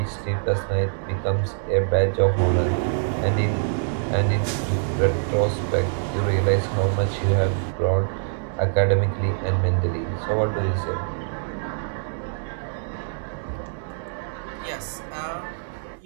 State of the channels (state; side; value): silent; left; digital silence